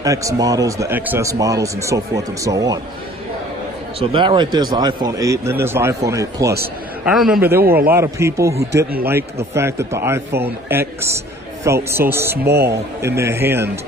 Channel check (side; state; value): both; normal; correlation 0.52